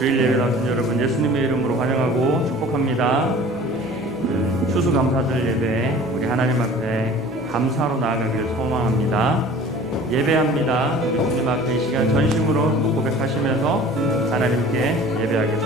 주일 예배 나오신 여러분 예수님의 이름으로 환영하고 축복합니다. 추수감사절 예배 우리 하나님 앞에 감사로 나아가기를 소망합니다. 예배합니다. 예수님 앞에 이 시간 전심으로 고백하시면서 하나님께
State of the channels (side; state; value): both; normal; correlation 0.44